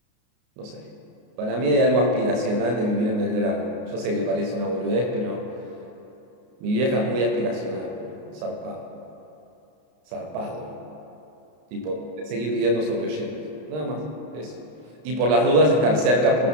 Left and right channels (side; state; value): left; late; 33 ms